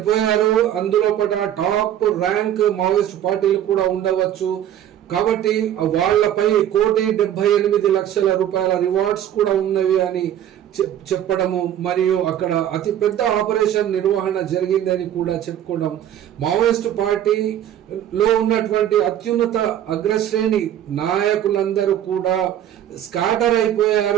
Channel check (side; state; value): left; quieter; 10.9 dB